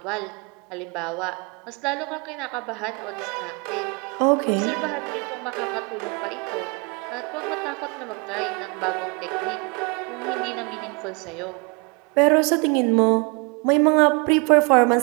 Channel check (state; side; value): quieter; left; 30.5 dB